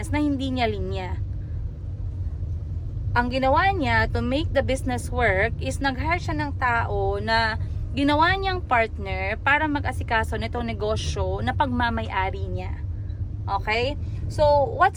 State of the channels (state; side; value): identical; both; correlation 1.00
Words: na hindi niya linya. Ang ginawa niya to make the business work is nag-hire siya ng tao na ginawa niyang partner para mag-asikaso nitong negosyo na pagmamay-ari niya. Okay? So,